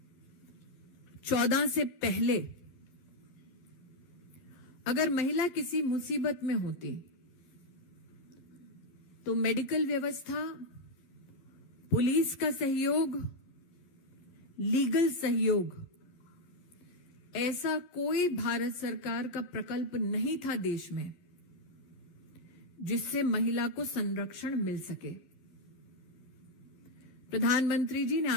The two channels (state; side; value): late; right; 12 ms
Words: से पहले अगर महिला किसी मुसीबत में होती तो मेडिकल व्यवस्था, पुलिस का सहयोग, लीगल सहयोग, ऐसा कोई भारत सरकार का प्रकल्प नहीं था देश में जिससे महिला को संरक्षण मिल सके। प्रधानमंत्री जी ने